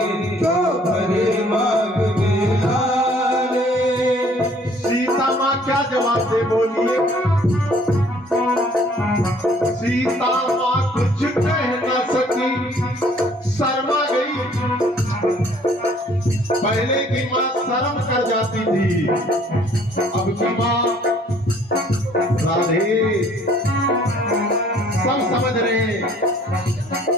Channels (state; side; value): normal; both; correlation 0.58